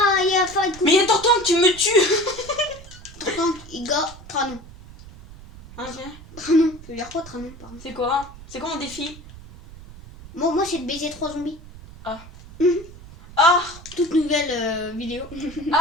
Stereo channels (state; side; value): noise; right; rumble, 18 dB below the sound